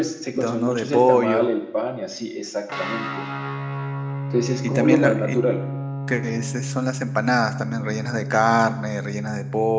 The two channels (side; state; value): both; identical; correlation 1.00